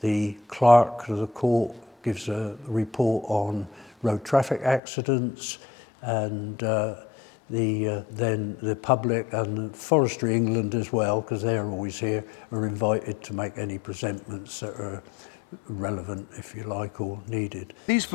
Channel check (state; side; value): drops out; right; at 4.8 s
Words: clerk of the court gives a report on road traffic accidents, and then the public and Forestry England as well, because they're always here, are invited to make any presentments that are relevant, if you like, or needed. These